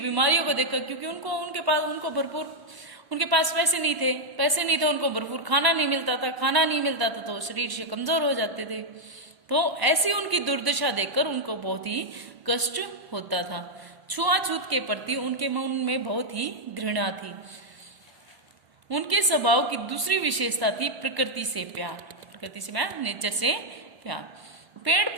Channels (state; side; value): late; left; 1.0 ms